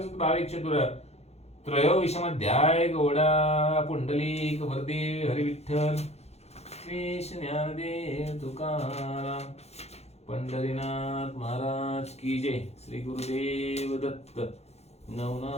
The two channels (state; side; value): late; right; 0.31 ms